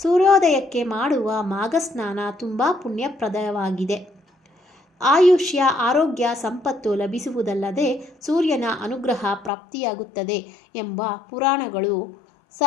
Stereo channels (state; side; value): drops out; right; at 9.5 s